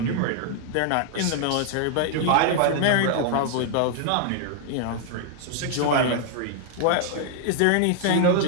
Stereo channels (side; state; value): both; different; correlation -0.01